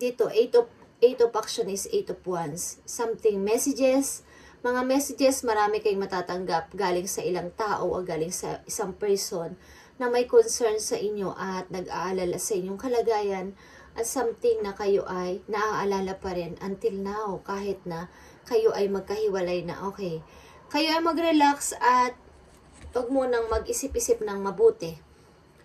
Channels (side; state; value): both; identical; correlation 1.00